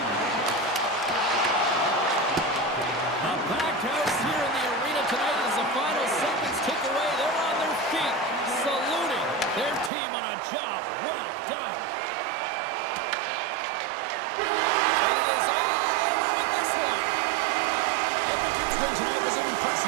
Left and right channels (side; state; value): left; drops out; at 9.9 s